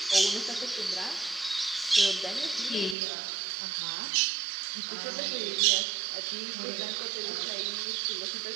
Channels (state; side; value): drops out; left; at 3.0 s